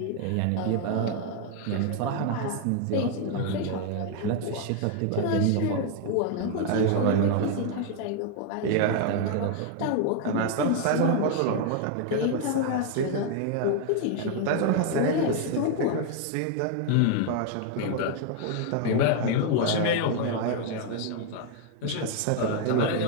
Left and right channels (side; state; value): both; different; correlation 0.00